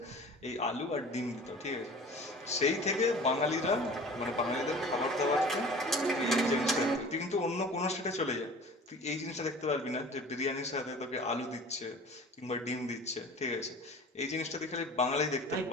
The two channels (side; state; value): both; normal; correlation 0.42